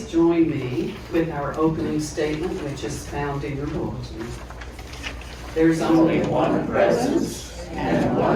join me with our opening statement, which is found in your bulletin. There's only one presence and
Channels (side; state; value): both; identical; correlation 1.00